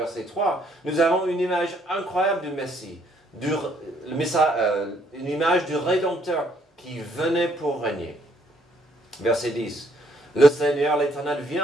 3, nous avons une image incroyable du Messie, une image du Rédempteur qui venait pour régner. Verset 10. Le Seigneur, l'Éternel, vient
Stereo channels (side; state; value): both; normal; correlation 0.68